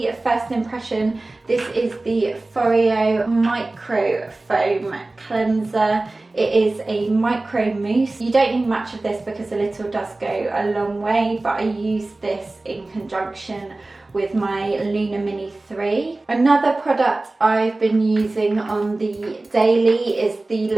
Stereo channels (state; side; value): quieter; left; 3.0 dB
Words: first impression. This is the Foreo Micro Foam Cleanser. It is a micro mousse. You don't need much of this because a little does go a long way, but I use this in conjunction with my Luna Mini 3. Another product I've been using on the daily is the